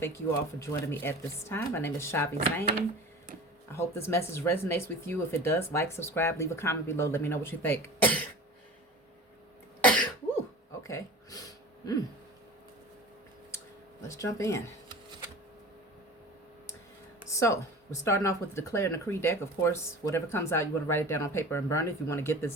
you all for joining me at this time. My name is Shavi Zane. I hope this message resonates with you. If it does, like, subscribe, leave a comment below. Let me know what you think. Ooh, okay. Let's jump in. So, we're starting off with the Declare and Decree deck. Of course, whatever comes out, you want to write it down on paper and burn it. If you want to get this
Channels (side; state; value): both; normal; correlation 0.37